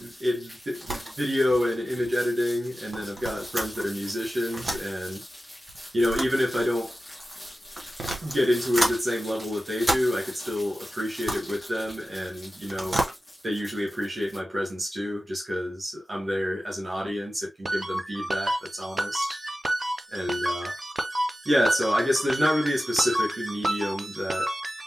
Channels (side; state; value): both; normal; correlation 0.94